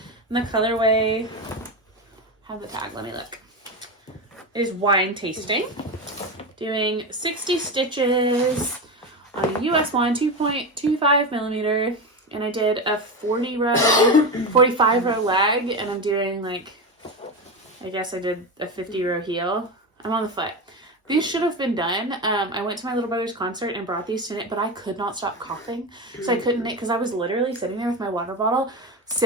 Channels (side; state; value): both; normal; correlation 0.18